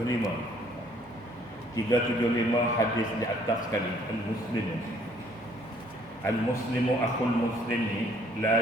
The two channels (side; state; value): right; noise; hum, 25 dB below the sound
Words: 375 hadis di atas sekali. Al-muslimu akhul muslimi